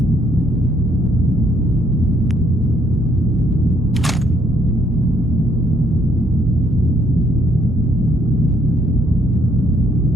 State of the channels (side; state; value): both; normal; correlation 0.68